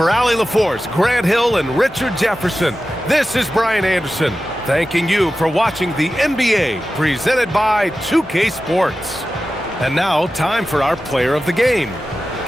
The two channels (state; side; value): normal; both; correlation 0.94